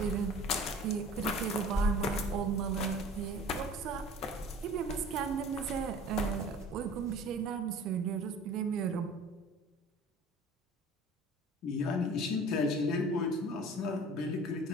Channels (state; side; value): normal; both; correlation 0.44